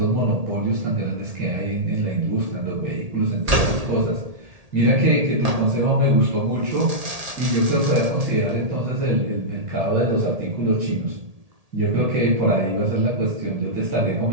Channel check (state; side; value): late; left; 1.8 ms